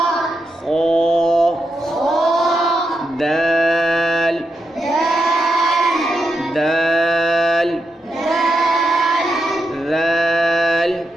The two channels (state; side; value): normal; both; correlation 0.84